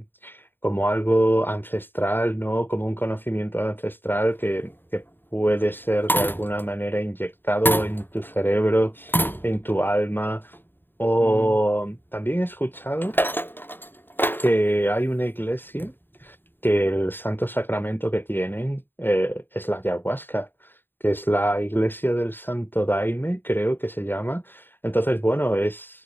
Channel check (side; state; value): right; late; 0.096 ms